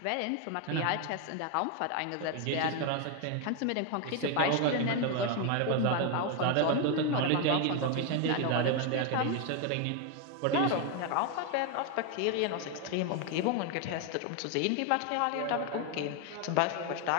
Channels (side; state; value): both; different; correlation 0.01